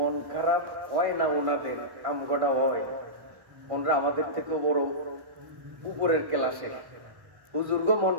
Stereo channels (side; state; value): left; late; 1.1 ms